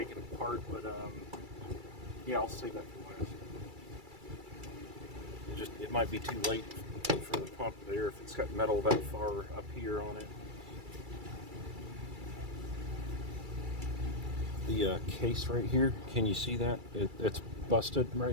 it apart, but yeah, I'll save that for last. It might be too late for the pump there if it's got metal that far up here on it. The case right here, can you see that? It's busted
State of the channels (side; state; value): left; late; 2.3 ms